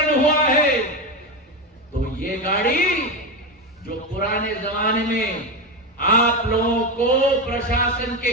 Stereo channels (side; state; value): both; normal; correlation 0.15